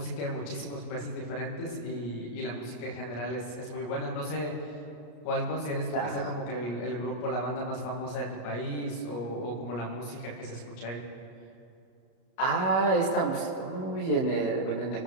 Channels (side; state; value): right; late; 34 ms